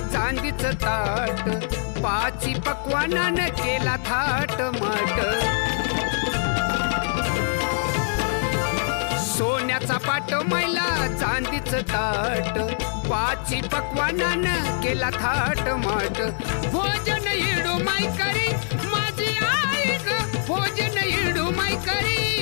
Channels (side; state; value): right; silent; digital silence